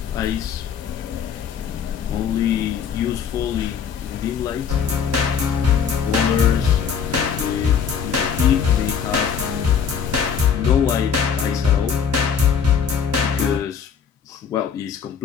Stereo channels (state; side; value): quieter; right; 7.1 dB